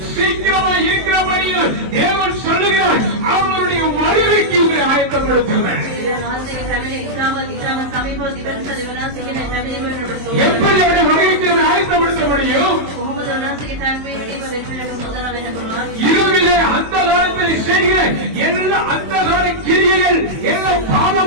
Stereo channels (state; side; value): late; left; 22 ms